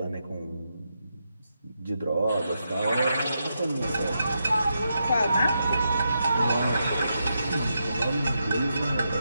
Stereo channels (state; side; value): inverted; both; correlation -0.84